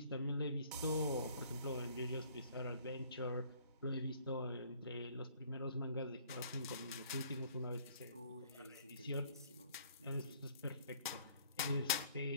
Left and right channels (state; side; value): inverted; both; correlation -0.58